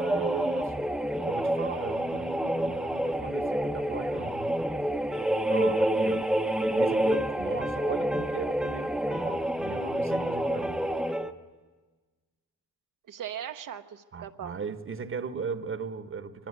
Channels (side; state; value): both; normal; correlation 0.81